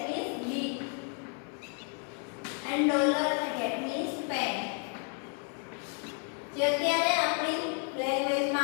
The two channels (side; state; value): right; quieter; 40.0 dB